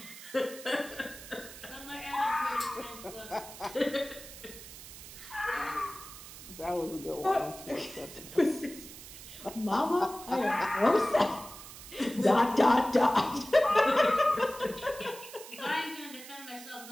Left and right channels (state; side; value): noise; right; hiss, 15 dB below the sound